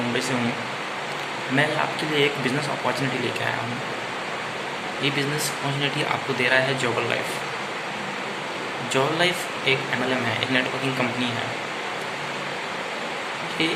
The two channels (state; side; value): identical; both; correlation 1.00